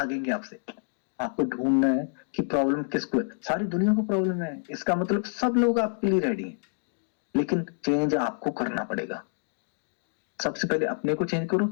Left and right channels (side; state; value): right; silent; 59 dB below the other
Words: आपसे। आपको ढूंढना है कि प्रॉब्लम किसको है। सारी दुनिया को प्रॉब्लम है, इसका मतलब सब लोग आपके लिए रेडी हैं, लेकिन चेंज आपको करना पड़ेगा। सबसे पहले अपने को चेंज करो,